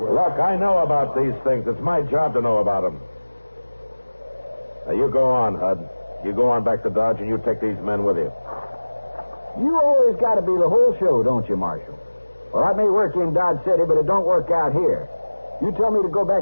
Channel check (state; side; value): inverted; both; correlation -1.00